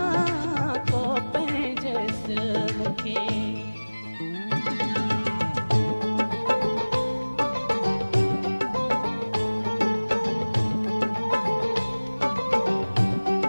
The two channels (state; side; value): inverted; both; correlation -1.00